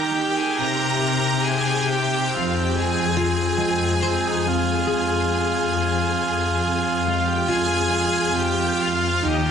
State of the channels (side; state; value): both; normal; correlation 0.69